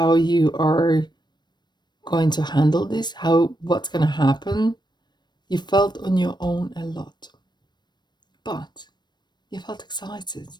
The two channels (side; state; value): right; late; 0.21 ms